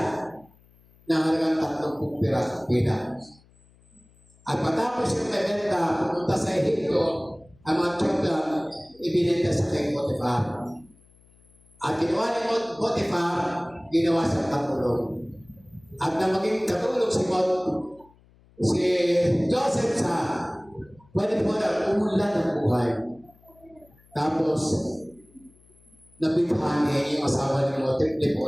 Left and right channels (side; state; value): left; noise; hum, 29 dB below the sound